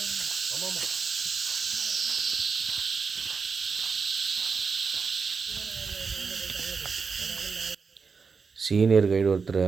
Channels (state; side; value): quieter; left; 5.2 dB